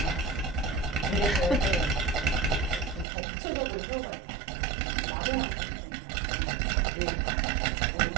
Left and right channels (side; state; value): left; drops out; at 3.1 s